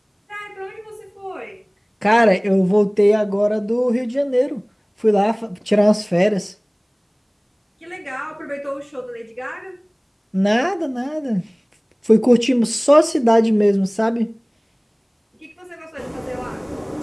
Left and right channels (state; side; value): identical; both; correlation 1.00